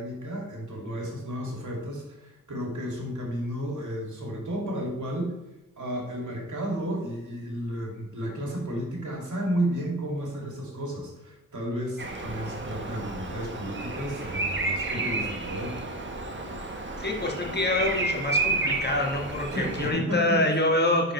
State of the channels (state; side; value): normal; both; correlation 0.23